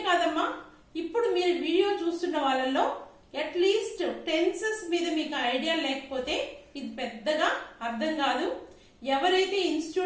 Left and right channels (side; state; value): both; identical; correlation 1.00